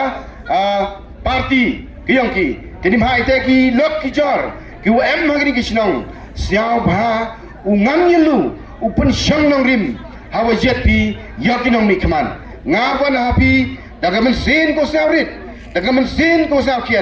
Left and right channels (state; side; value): identical; both; correlation 1.00